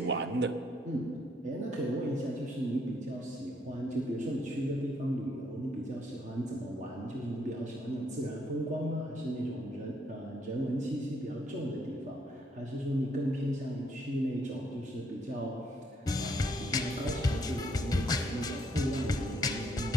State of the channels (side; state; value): both; normal; correlation 0.71